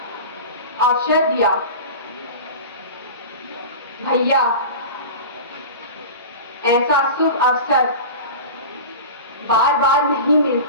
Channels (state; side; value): inverted; both; correlation -0.31